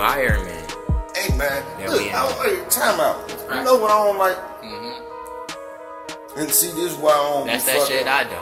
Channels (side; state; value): both; identical; correlation 1.00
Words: Hey man, Yeah, look, time out. You know what I don't like? And see, this is why I don't. That's be that fucking- shit I